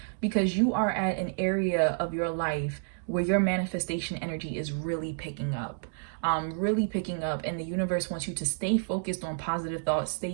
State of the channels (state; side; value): silent; left; digital silence